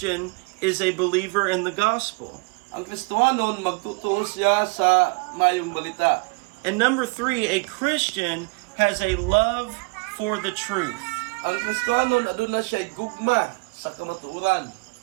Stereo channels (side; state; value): left; quieter; 29.6 dB